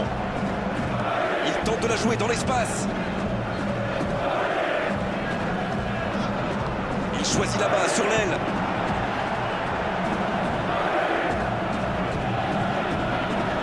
Il tente de la jouer dans l'espace. Il choisit là-bas, sur l'aile.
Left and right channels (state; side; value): identical; both; correlation 1.00